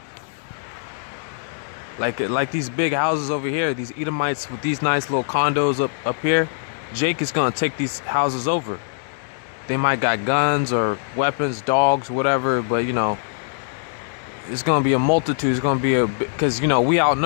Like these big houses over here, these Edomites with these nice little condos up here, Jake is gonna take these houses over. They might got guns or weapons, dogs, whatever, but It's gonna be a multitude. It's gonna be because we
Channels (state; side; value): silent; right; 64 dB below the other